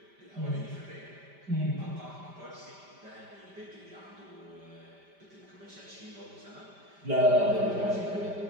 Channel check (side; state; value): left; late; 5.1 ms